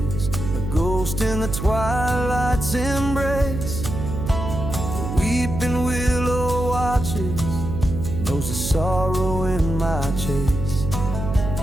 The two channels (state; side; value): noise; right; hum, 5 dB below the sound